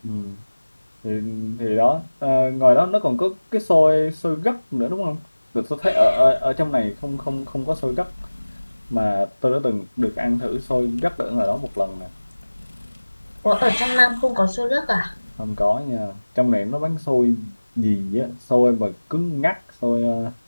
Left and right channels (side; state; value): both; inverted; correlation -1.00